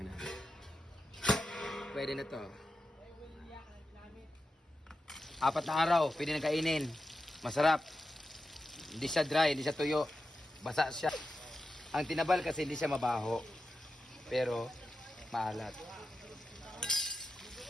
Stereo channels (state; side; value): normal; both; correlation 0.91